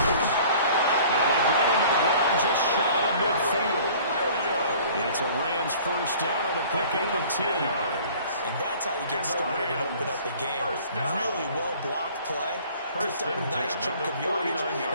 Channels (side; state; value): both; inverted; correlation -0.50